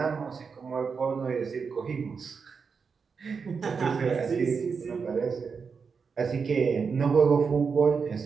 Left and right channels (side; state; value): left; quieter; 5.6 dB